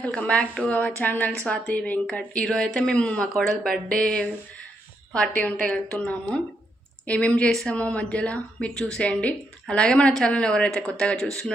welcome back to our channel Swathi Venkat. ఈరోజు అయితే మేము మా కోడలు బర్త్డే పార్టీ ఉంటే వెళ్తున్నాము. ఏమేమి చేస్తామో మధ్యలో మీరు చూసేయండి. అలాగే మన ఛానల్ ఎవరైతే కొత్తగా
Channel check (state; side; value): normal; both; correlation 0.79